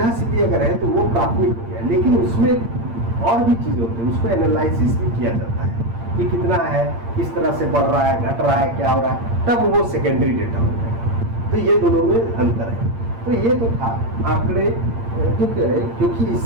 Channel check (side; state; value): left; late; 8.7 ms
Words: सीधी अगर है तो वो प्राथमिक हो गया। लेकिन उसमें और भी चीज़ें होती हैं, उसको एनालिसिस भी किया जाता है कि कितना है, किस तरह से बढ़ रहा है, घट रहा है, क्या हो रहा है, तब वो सेकेंडरी डेटा हो जाएगा। तो ये दोनों में अंतर है। तो ये तो था आंकड़े क्यों कह रहे, क्योंकि